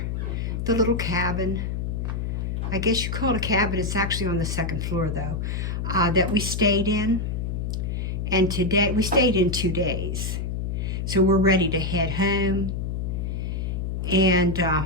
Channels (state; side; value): noise; left; hum, 2 dB below the sound